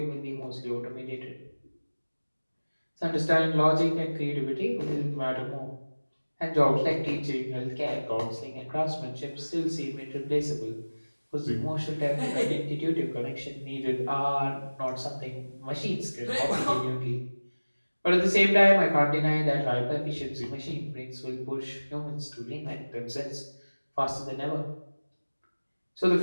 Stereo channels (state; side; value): inverted; both; correlation -1.00